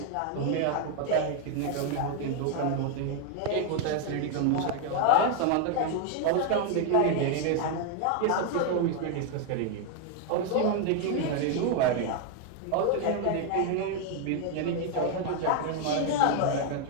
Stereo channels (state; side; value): different; both; correlation 0.01